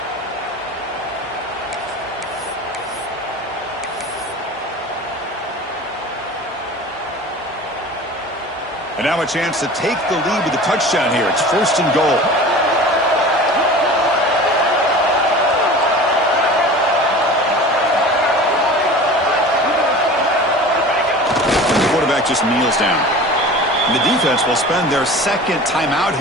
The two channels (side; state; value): both; normal; correlation 0.38